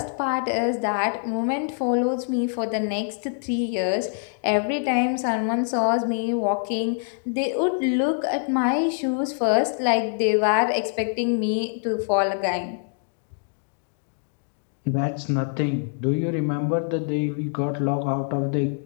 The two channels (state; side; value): silent; right; digital silence